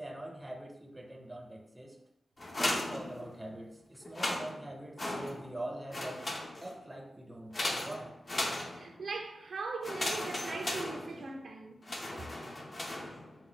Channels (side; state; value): both; normal; correlation 0.92